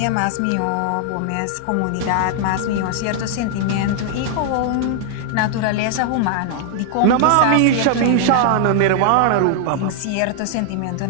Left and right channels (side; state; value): both; different; correlation 0.00